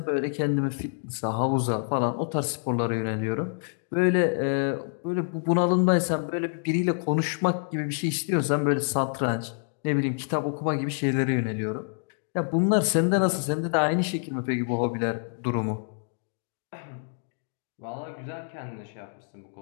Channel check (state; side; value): silent; right; 60 dB below the other